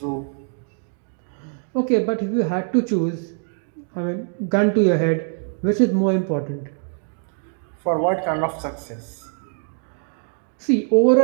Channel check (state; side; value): silent; left; 63 dB below the other